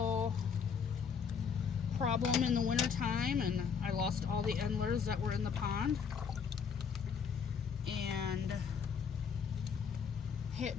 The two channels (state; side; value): quieter; right; 6.4 dB